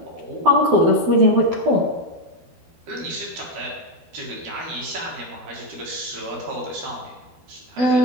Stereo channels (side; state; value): left; late; 12 ms